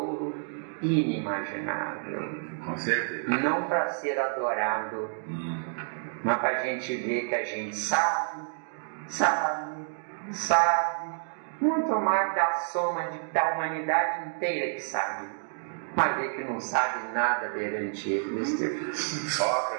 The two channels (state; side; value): silent; left; digital silence